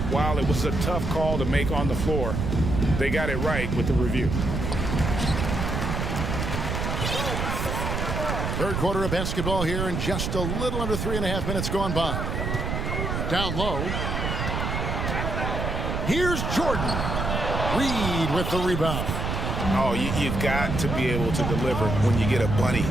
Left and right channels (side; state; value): right; noise; rumble, 2 dB below the sound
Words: while it was a tough call to make on the floor, they got it right with the review. 3rd quarter of basketball here, and just a little under 3.5 minutes gone by. Down low. Here's Jordan. Reed with the rebound. Oh, you've got to be able to deliver when you get a bunny